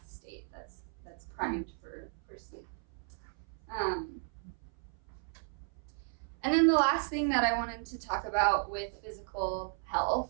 state that's primed for sleep. And then the last thing that I wanted to talk about with physical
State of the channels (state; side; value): silent; left; 55 dB below the other